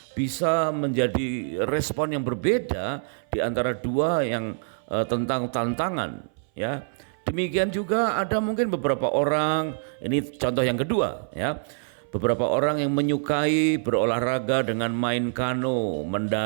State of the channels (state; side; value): silent; left; 58 dB below the other